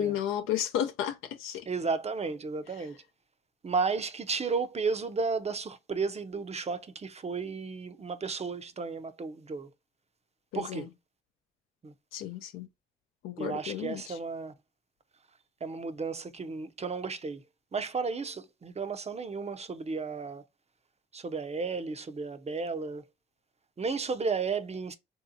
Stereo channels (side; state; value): both; normal; correlation 0.34